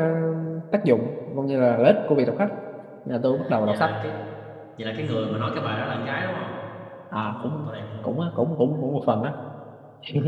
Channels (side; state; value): both; identical; correlation 1.00